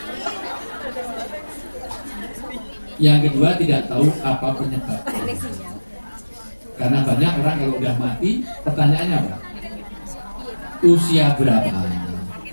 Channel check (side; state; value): both; inverted; correlation -1.00